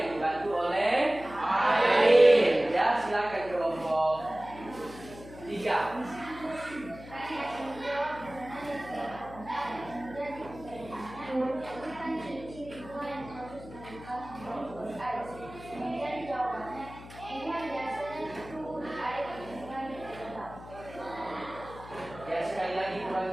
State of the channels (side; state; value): left; noise; hum, 16 dB below the sound